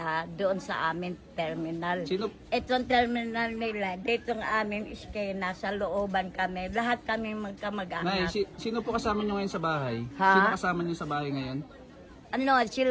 doon sa amin terminal. Sino, Itong terminal nila, dito ng aming iskena, sa looban kami. Lahat kami Nay, magkamag-anak. sino po kasama nyo ngayon sa bahay? Ha? Sino kasama nyo sa bahay ngayon? Ano,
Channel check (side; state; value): both; identical; correlation 1.00